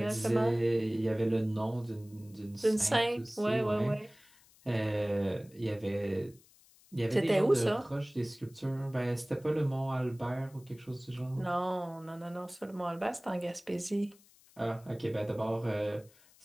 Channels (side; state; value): left; noise; hiss, 27 dB below the sound